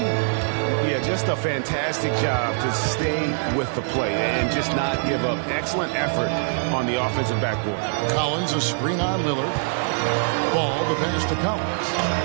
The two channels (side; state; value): left; silent; digital silence